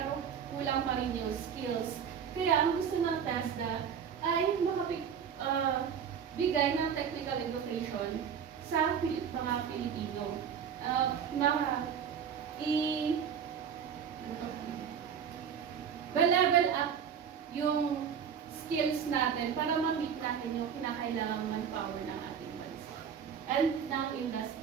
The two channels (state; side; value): quieter; left; 7.6 dB